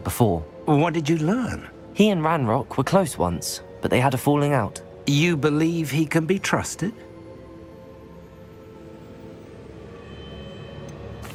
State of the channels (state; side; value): identical; both; correlation 1.00